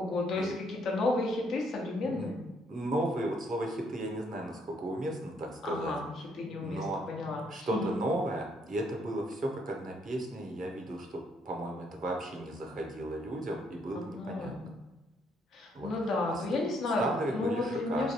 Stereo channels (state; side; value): normal; both; correlation 0.70